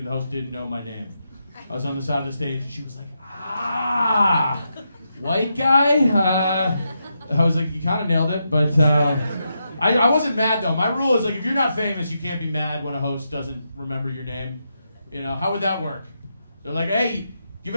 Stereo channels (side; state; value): both; inverted; correlation -0.84